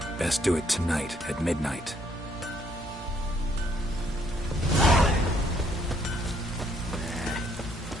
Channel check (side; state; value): both; normal; correlation 0.68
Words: Best do it tonight, at midnight.